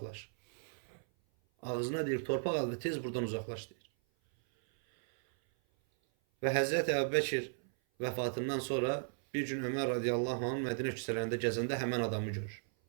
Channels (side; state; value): left; silent; 54 dB below the other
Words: Ağzına deyir, torpaq al və tez buradan uzaqlaş deyir. Və Həzrət Əbu Bəkir vəfatından sonra bir gün Ömər radiyallahu anh Mədinə küçələrində gəzəndə həmən adamı görür.